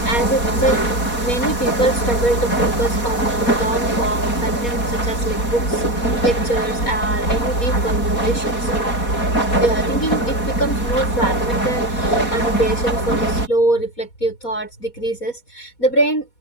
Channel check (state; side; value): late; right; 4.2 ms